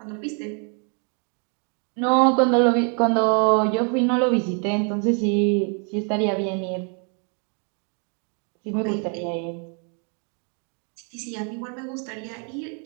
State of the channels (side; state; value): left; quieter; 40.0 dB